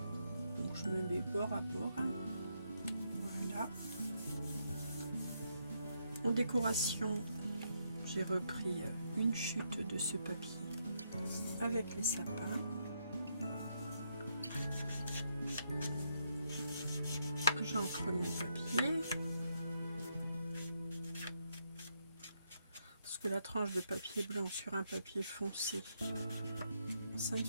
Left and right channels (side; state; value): both; inverted; correlation -0.78